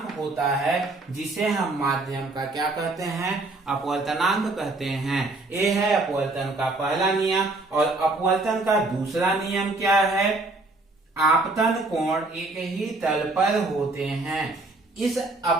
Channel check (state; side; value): quieter; left; 3.1 dB